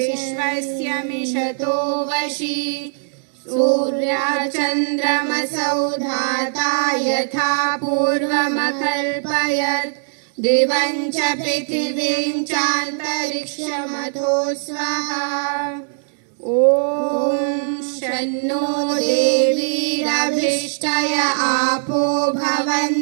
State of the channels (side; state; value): left; silent; digital silence